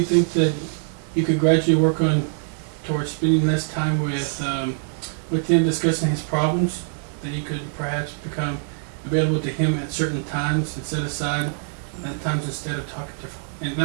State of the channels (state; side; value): silent; left; 63 dB below the other